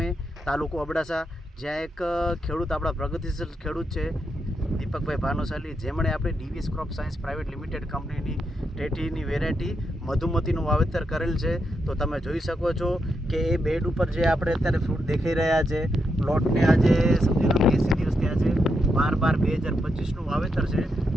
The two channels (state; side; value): normal; both; correlation 0.82